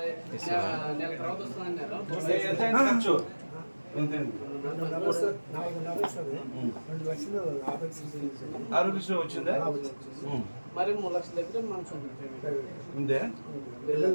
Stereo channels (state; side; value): inverted; both; correlation -1.00